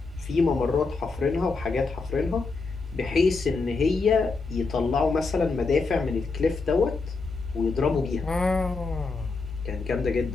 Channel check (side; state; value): right; quieter; 4.1 dB